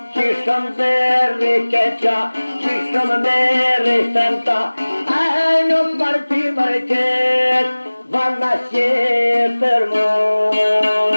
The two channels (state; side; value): inverted; both; correlation -1.00